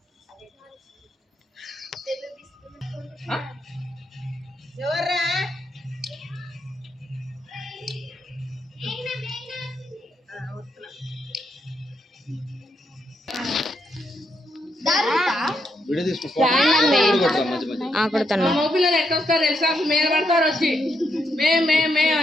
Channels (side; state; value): both; normal; correlation 0.79